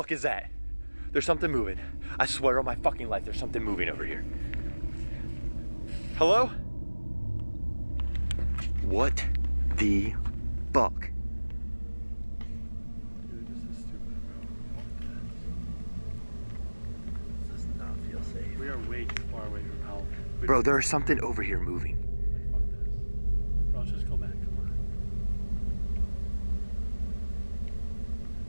is that? There's something moving. I swear on my fucking life, there's something moving over here. Hello? What the fuck? Dude, this is stupid, bro. This does not feel safe. We are way too far away from help. Bro, there's something over here moving. Bro, let's just go back. Come on.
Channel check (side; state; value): both; inverted; correlation -1.00